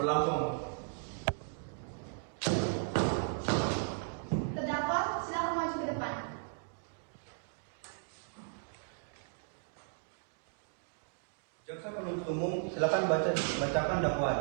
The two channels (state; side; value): silent; left; 54 dB below the other